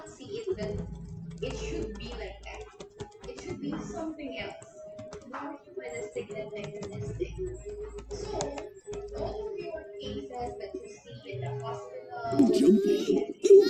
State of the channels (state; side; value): identical; both; correlation 1.00